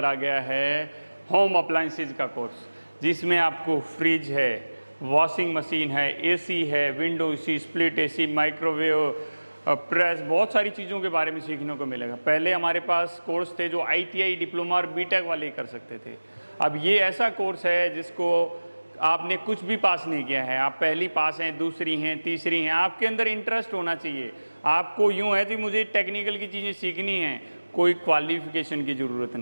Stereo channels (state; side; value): inverted; both; correlation -1.00